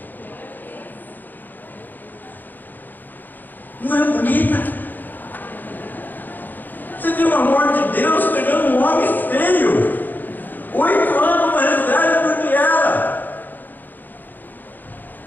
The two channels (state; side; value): late; right; 0.087 ms